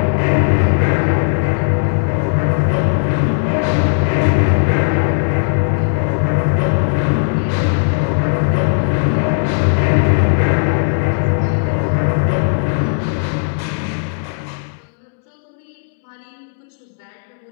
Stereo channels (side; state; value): right; silent; digital silence